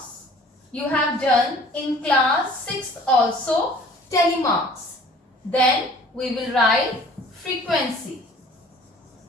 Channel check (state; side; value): normal; both; correlation 0.50